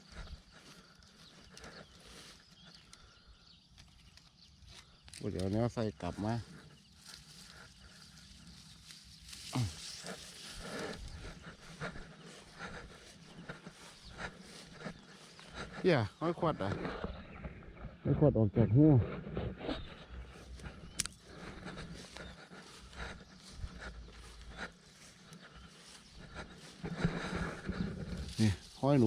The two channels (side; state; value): both; identical; correlation 1.00